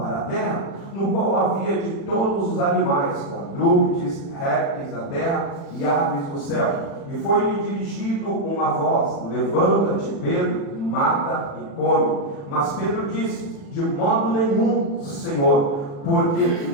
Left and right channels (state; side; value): late; right; 36 ms